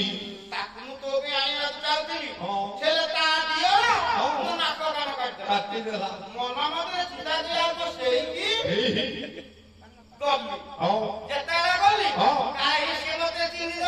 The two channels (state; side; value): identical; both; correlation 1.00